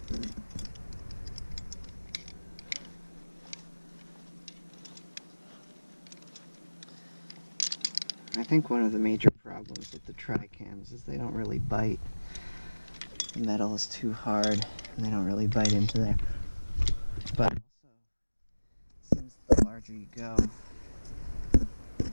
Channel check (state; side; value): inverted; both; correlation -1.00